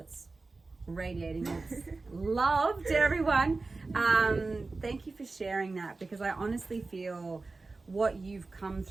radiating its love to everyone. Thank you for sharing that, because I honestly feel what you've come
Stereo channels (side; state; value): left; quieter; 3.6 dB